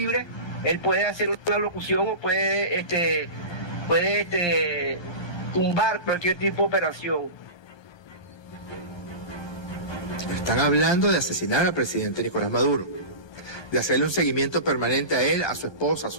él puede hacer una locución o puede tumbar cualquier tipo de operación. Están hablando de asesinar al presidente Nicolás Maduro, de hacerle un seguimiento permanente a él, a su esposa, a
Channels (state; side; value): late; right; 1.2 ms